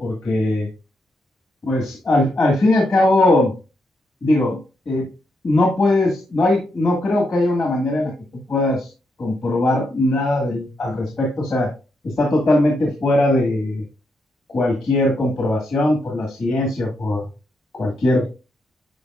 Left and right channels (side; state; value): both; normal; correlation 0.81